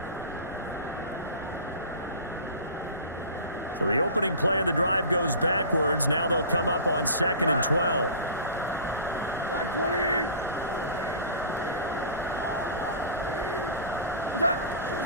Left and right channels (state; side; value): inverted; both; correlation -0.37